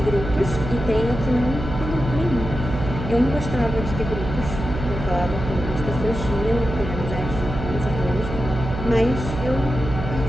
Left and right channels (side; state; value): right; noise; hum, 6 dB below the sound